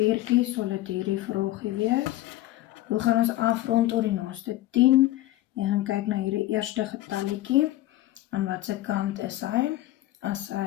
sal dit hierdie vraagie wees. Hoe gaan ons afrond tot die naaste 10? Jy gaan kyk na hierdie eerste getalletjie. Aan watse kant is hy? As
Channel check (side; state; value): right; quieter; 15.6 dB